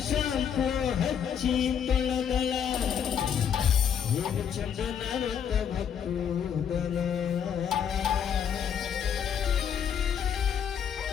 ಶಾಂಪು ಹಚ್ಚಿ ತೊಳೆದಳ ಏನು ಚಂದ ನಾನಂತ ಭಕ್ತೂದಲ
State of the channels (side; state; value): right; quieter; 8.1 dB